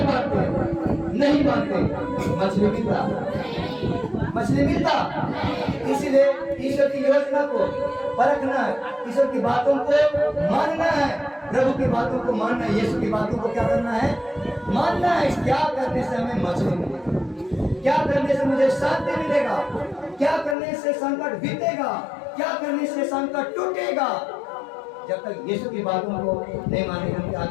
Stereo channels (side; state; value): right; drops out; at 20.6 s